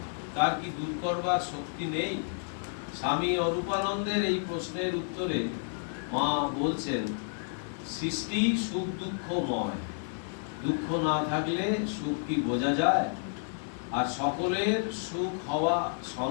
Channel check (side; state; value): right; silent; digital silence